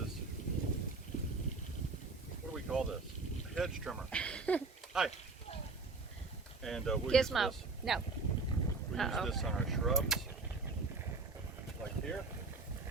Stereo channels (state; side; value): quieter; left; 3.9 dB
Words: what do we call this? A hedge trimmer. Hi. And we'll use Gizmo. this. No. We use this on our shrubs, like here.